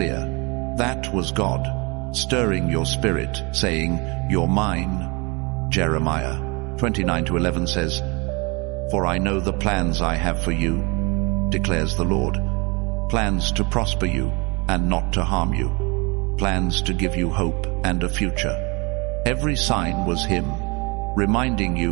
That was God, stirring your spirit, saying, you're mine. Jeremiah 29:11 says, for I know the plans I have for you, declares the Lord. Plans to prosper you and not to harm you. Plans to give you hope and a future. Every sign was Him, reminding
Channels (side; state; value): left; quieter; 28.8 dB